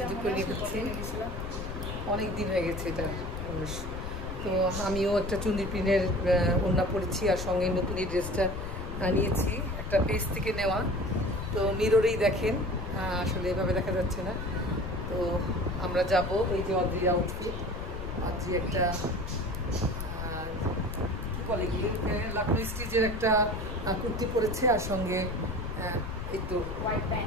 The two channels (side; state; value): left; noise; rumble, 6 dB below the sound